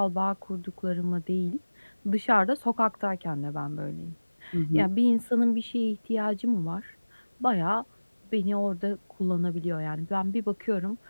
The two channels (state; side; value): inverted; both; correlation -1.00